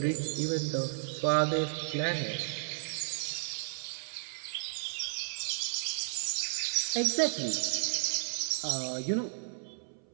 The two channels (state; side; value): silent; left; 56 dB below the other